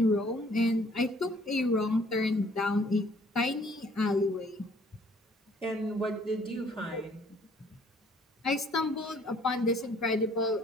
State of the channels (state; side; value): normal; both; correlation 0.60